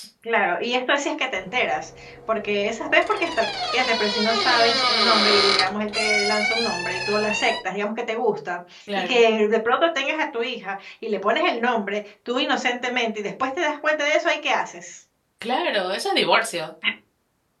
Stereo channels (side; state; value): both; identical; correlation 1.00